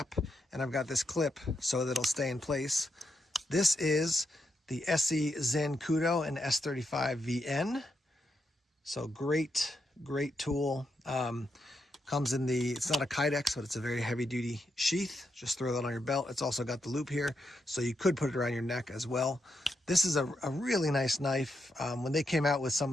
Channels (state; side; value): normal; both; correlation 0.82